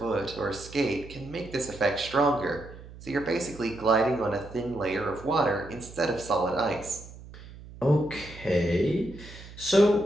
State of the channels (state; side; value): noise; right; hum, 17 dB below the sound